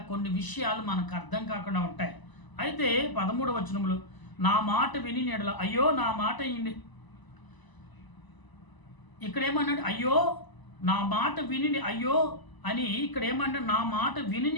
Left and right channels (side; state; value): right; late; 1.0 ms